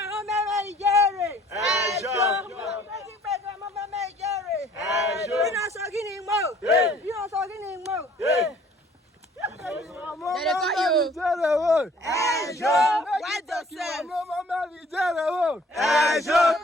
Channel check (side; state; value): both; normal; correlation 0.56